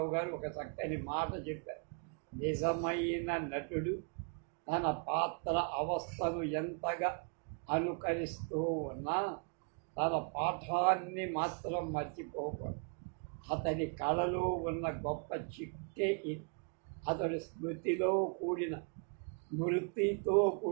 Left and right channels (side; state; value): left; quieter; 38.6 dB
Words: గారు ఒక చక్కని మాట చెప్పారు. నిజమైన నటుడు తన పాత్ర అవస్థను ఎంతగా అనుకరిస్తూ ఉన్నా తన పాఠాన్ని మాత్రం మర్చిపోకూడదు. అతని కళలో ఉన్న గొప్ప చిక్కే ఇది. అతడు స్మృతితో కూడిన